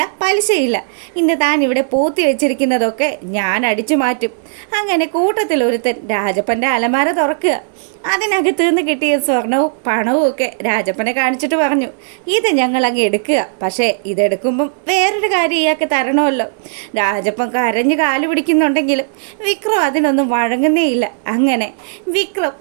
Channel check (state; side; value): silent; left; digital silence